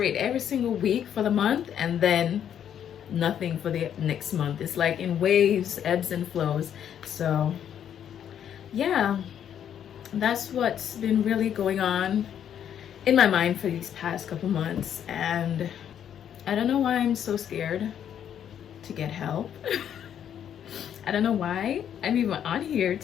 every single week for the month and then nothing for the next month. It's like in waves, ebbs and flows. So yeah, that's what's been really going on in my mind for these past couple months. And I don't know why I'm so scared to get help. I don't know why I'm even on here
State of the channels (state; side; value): quieter; right; 9.4 dB